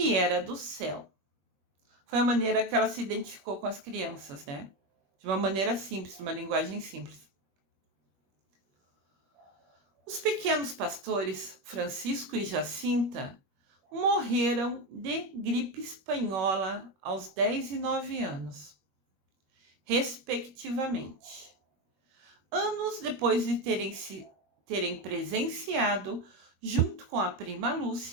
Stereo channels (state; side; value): late; left; 21 ms